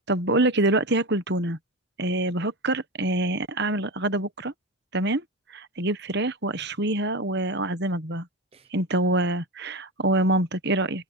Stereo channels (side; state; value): both; normal; correlation 0.21